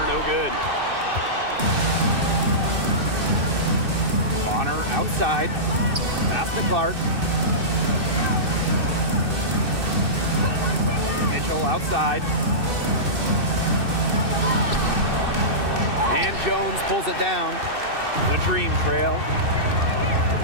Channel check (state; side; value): late; left; 2.6 ms